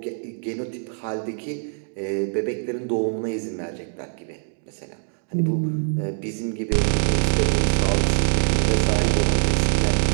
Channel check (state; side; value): silent; left; digital silence